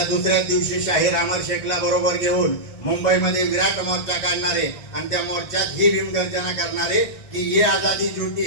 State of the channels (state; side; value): late; right; 1.5 ms